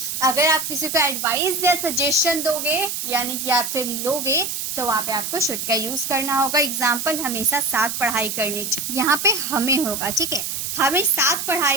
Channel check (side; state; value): right; noise; hiss, 4 dB below the sound